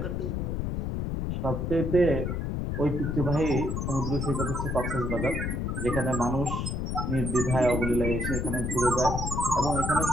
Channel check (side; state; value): left; noise; rumble, 1 dB below the sound